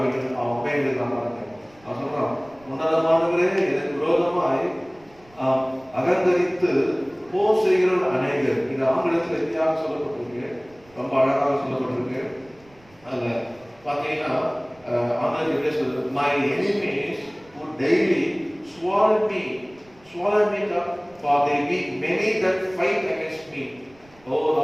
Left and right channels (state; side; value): noise; right; rumble, 28 dB below the sound